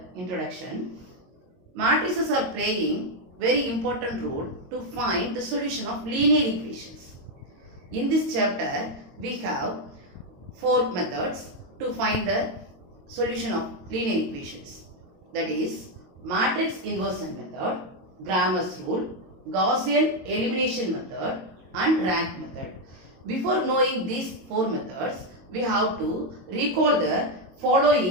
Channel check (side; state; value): left; late; 22 ms